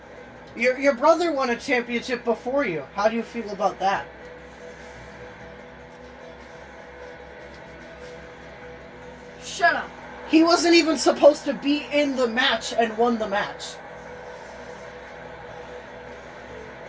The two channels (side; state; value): both; identical; correlation 1.00